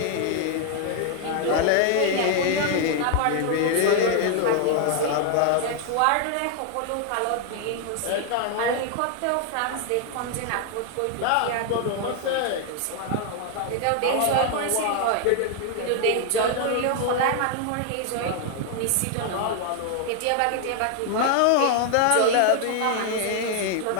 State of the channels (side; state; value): both; different; correlation 0.00